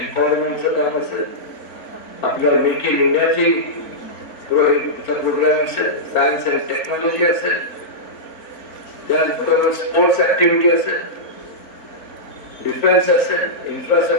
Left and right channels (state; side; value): late; right; 4.4 ms